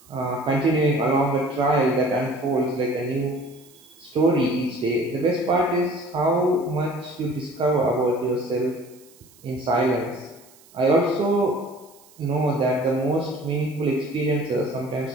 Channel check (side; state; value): right; noise; hiss, 26 dB below the sound